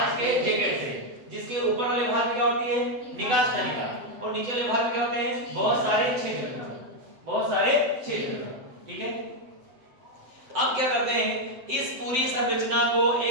के जैकेट से, जिसके ऊपर वाले भाग में क्या होती है, निकास नलिका, और नीचे वाले भाग में क्या होते हैं, बहुत सारे छिद्र। ठीक है, अब क्या करते हैं, इस पूरी संरचना को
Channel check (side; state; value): left; late; 7.7 ms